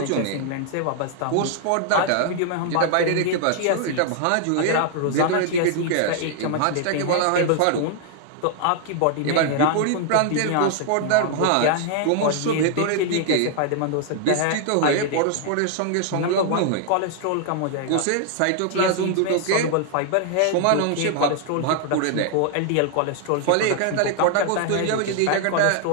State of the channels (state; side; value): different; both; correlation 0.00